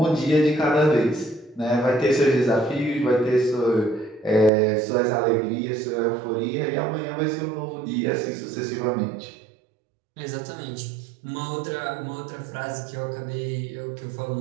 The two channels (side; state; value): left; drops out; at 4.5 s